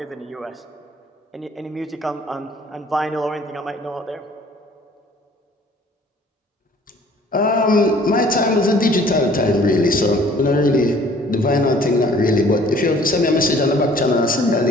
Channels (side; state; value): both; normal; correlation 0.54